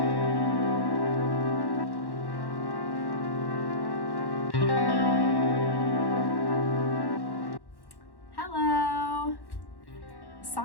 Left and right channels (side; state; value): right; late; 1.1 ms